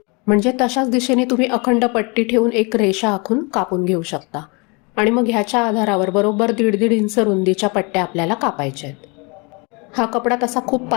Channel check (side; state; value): right; quieter; 30.4 dB